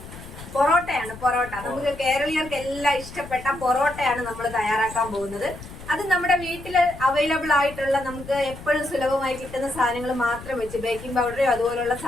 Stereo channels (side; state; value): left; noise; rumble, 15 dB below the sound